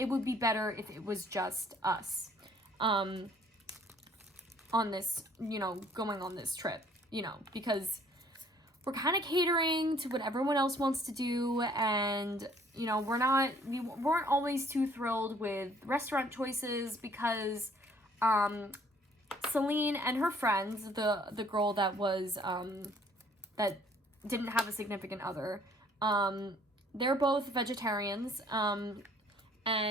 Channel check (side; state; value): both; normal; correlation 0.59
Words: would be better if it was just us on this, going on this trip, because we're kind of catering to what everyone else wants to do, and, we weren't always too thrilled with restaurant choices, because Celine and her friends, the girl that was, that didn't have a significant other, they're both vegetarians,